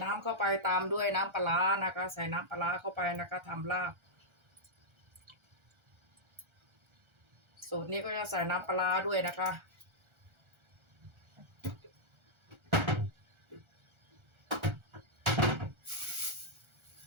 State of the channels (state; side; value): late; left; 1.4 ms